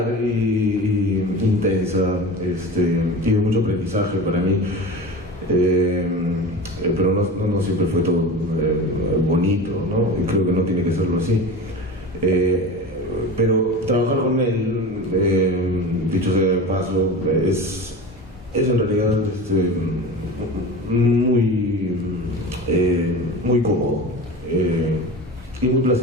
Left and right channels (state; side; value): normal; both; correlation 0.31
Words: y intensa, y de mucho aprendizaje para mí, pero no siempre fue todo bonito, ¿no? Y creo que no tiene que serlo así. Pero trabajar con él, dicho sea de paso, es en realidad muy cómodo y muy